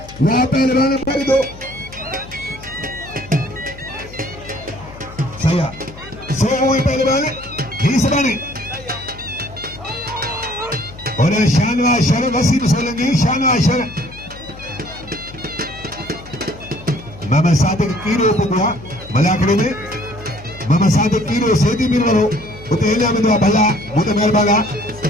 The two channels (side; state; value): left; noise; hum, 17 dB below the sound